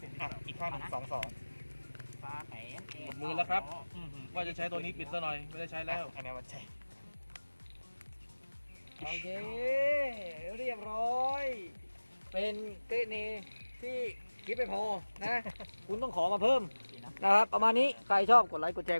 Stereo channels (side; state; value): both; inverted; correlation -1.00